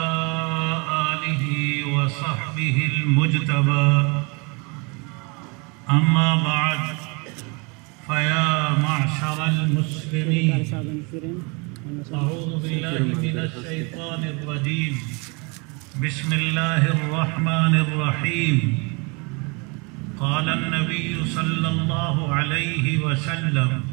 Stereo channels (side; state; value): left; quieter; 30.8 dB